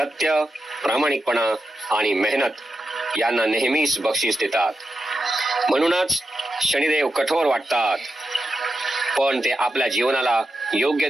प्रामाणिकपणा आणि मेहनत यांना नेहमीच बक्षीस देतात. म्हणूनच शनिदेव कठोर वाटतात, पण ते आपल्या जीवनाला योग्य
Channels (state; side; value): normal; both; correlation 0.88